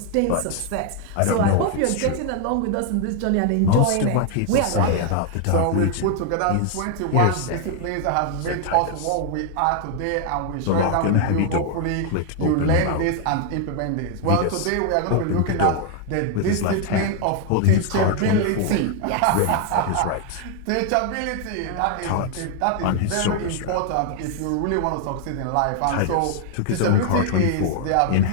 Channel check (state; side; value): different; both; correlation 0.00